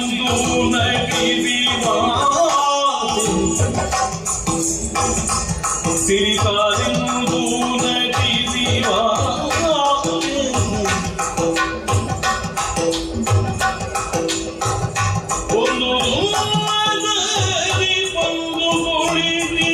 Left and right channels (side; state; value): both; identical; correlation 1.00